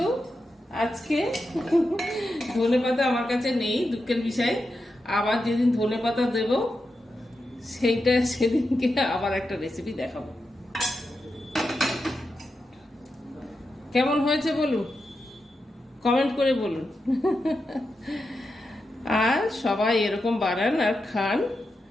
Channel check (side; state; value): both; normal; correlation 0.88